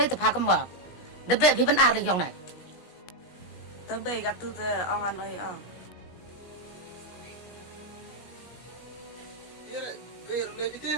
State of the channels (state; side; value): late; right; 17 ms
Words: te pha kam ba de be phi ban ar le yong nai Tớ bể gặp tu tớ ông ăn ơi Biar boleh